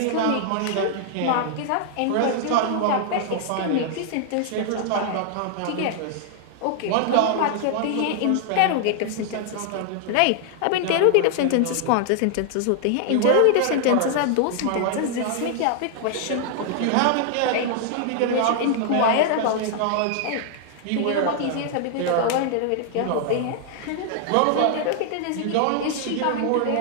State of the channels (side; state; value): both; different; correlation -0.01